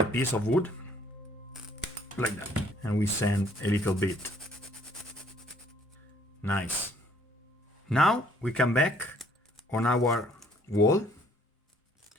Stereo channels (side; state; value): both; normal; correlation 0.60